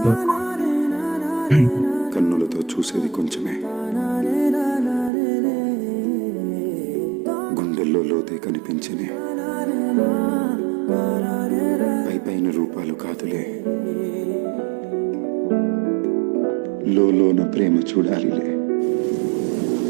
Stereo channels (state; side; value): drops out; left; at 5.1 s